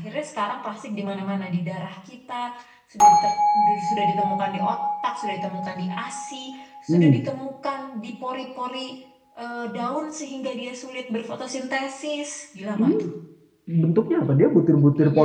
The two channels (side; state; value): both; identical; correlation 1.00